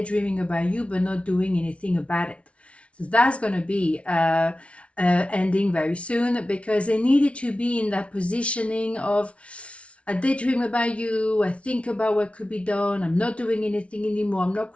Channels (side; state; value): right; late; 0.062 ms